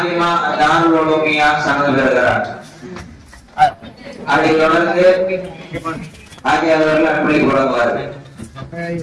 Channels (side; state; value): both; identical; correlation 1.00